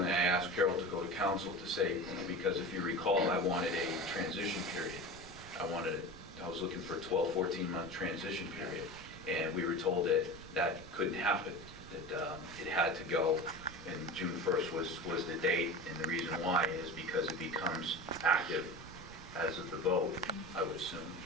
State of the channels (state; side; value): noise; right; rumble, 16 dB below the sound